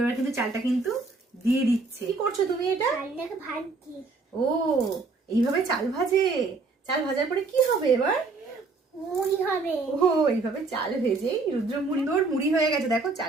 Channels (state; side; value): quieter; left; 3.9 dB